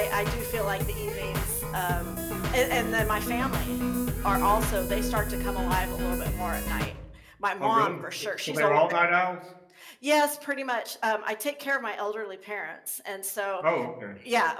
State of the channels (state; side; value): identical; both; correlation 1.00